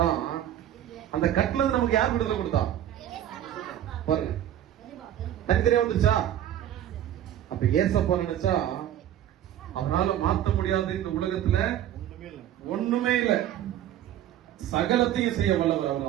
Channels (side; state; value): left; quieter; 11.5 dB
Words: அந்த கட்டுல இருந்து நமக்கு யார் விடுதலை கொடுத்தா? பாருங்க, தனித்தனியா வந்துருச்சா? அப்ப ஏசப்பா நினைச்சா அவனால மாத்த முடியாது இந்த உலகத்துல ஒண்ணுமே இல்ல, சகலத்தையும் செய்ய வல்லவர்